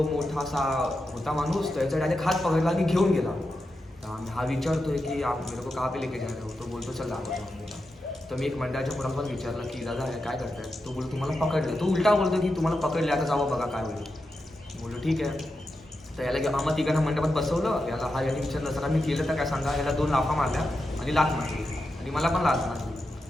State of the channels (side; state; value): both; normal; correlation 0.88